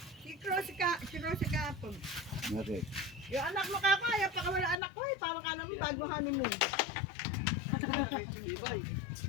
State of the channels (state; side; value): drops out; right; at 4.8 s